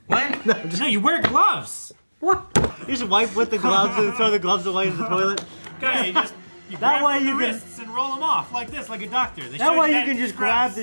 What? No, you wear gloves. What? You just wipe with the gloves and throw the gloves away in the toilet. Okay, you That grab way from you the can- wrists and roll them off like this, like a doctor. They That show way you that can just scrubs. grab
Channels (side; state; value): both; inverted; correlation -1.00